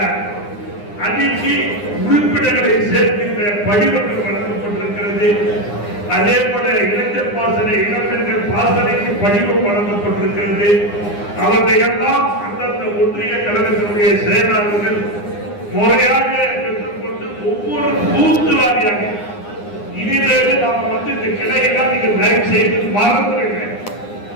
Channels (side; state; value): right; late; 9.8 ms